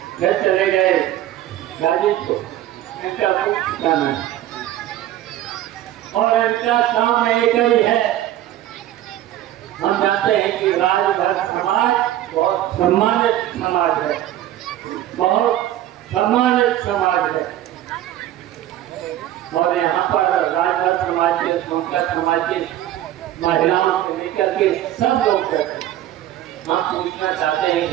गए गाजीपुर। इनका कोई ठिकाना है और इनका काम एक ही है। हम जानते हैं कि राजभर समाज बहुत सम्मानित समाज है, बहुत सम्मानित समाज है। और यहाँ पर राजभर समाज के, सोनकर समाज के महिलाओं से लेकर के सब लोग रहते हैं। हम पूछना चाहते हैं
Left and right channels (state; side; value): quieter; left; 13.0 dB